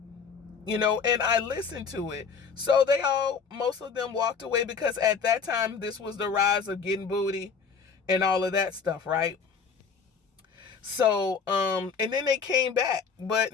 And I listened to it. So most of them walked away, because at that time, this was the rise of getting booty and all of that stuff, right? So, and then they came back, but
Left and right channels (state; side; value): quieter; right; 5.8 dB